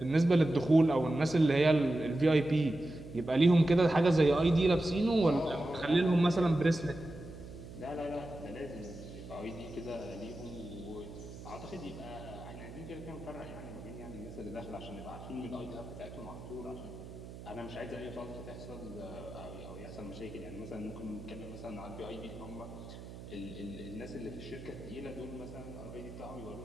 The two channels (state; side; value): noise; right; hum, 13 dB below the sound